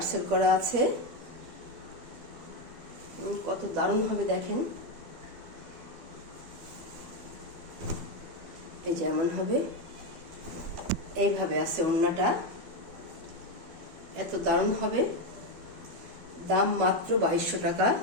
করা আছে, কত দারুণ হবে দেখেন। এই যে এমন হবে, এইভাবে আছে ওড়নাটা, এত দারুণ হবে। দাম মাত্র 2200 টাকা।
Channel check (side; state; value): left; late; 12 ms